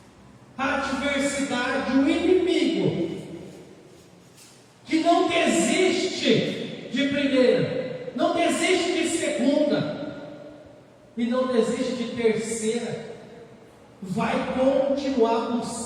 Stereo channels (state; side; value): identical; both; correlation 1.00